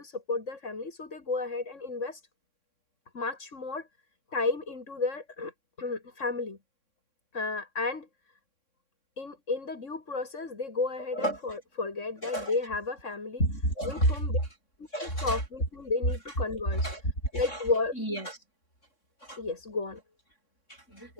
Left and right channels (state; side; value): late; right; 3.6 ms